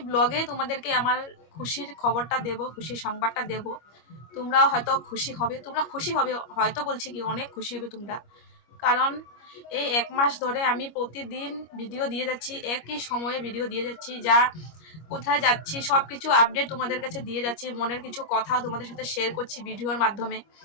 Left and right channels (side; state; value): right; late; 25 ms